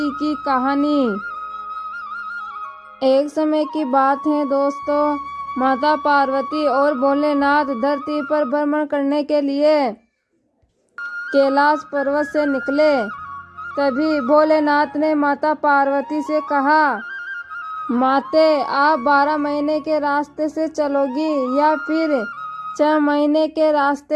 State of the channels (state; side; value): identical; both; correlation 1.00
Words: की कहानी। एक समय की बात है दोस्तों, माता पार्वती और भोलेनाथ धरती पर भ्रमण करने के लिए कैलाश पर्वत से निकले। तभी भोलेनाथ ने माता पार्वती से कहा, माते आप 12 महीने के रास्ते से चलोगी या फिर 6 महीने के